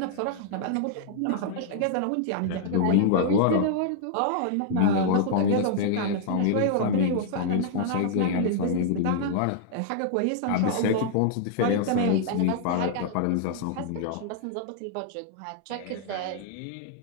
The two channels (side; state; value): both; different; correlation -0.01